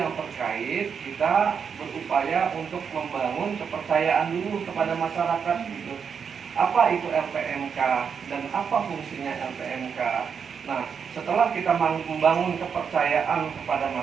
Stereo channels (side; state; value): left; quieter; 6.6 dB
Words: terkait kita berupaya untuk membangun kepercayaan dulu kepada masyarakat gitu. Apa itu LPMK dan apa fungsinya LPMK? Nah, setelah kita membangun kepercayaan kepada